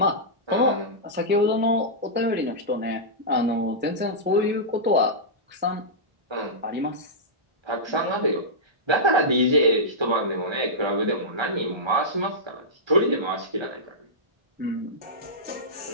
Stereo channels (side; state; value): left; late; 1.3 ms